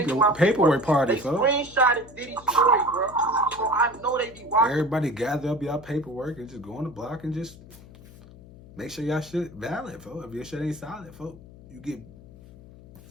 party, they folks. screenshotted Diddy's story, bro. So I know they be watching. Everybody gather up y'all paperwork and just go on the block and just make sure y'all shit valid, folks. If your shit ain't solid, folks, you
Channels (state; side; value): noise; left; hum, 20 dB below the sound